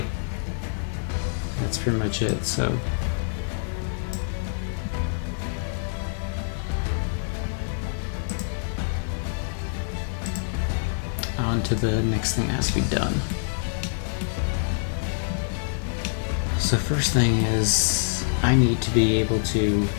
That's pretty much it. So on to the next thing that has to be done. So first thing is I need to be able to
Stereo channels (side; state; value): right; silent; digital silence